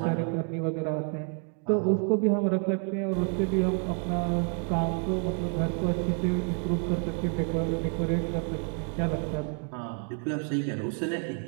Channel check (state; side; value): quieter; left; 38.4 dB